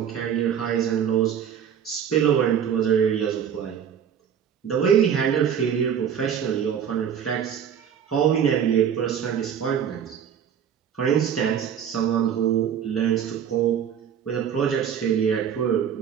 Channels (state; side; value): quieter; left; 8.4 dB